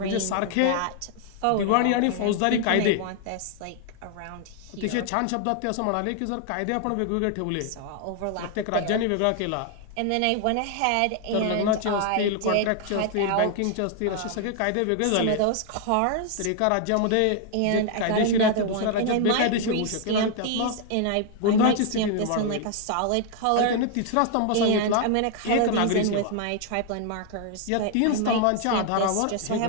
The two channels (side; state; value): both; different; correlation 0.00